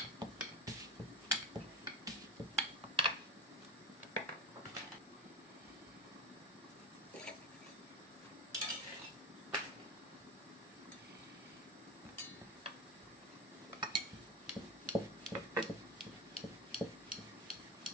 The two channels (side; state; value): both; normal; correlation 0.29